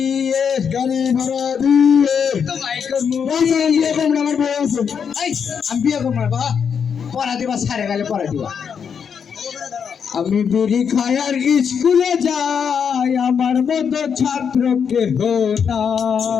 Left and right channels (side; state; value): right; quieter; 7.0 dB